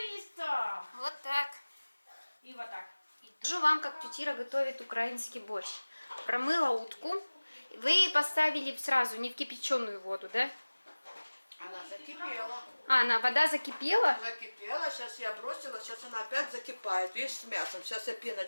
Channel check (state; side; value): inverted; both; correlation -1.00